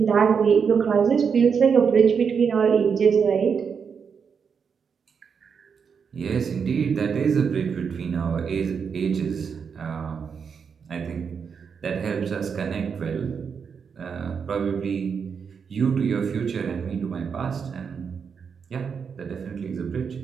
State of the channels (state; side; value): quieter; left; 6.4 dB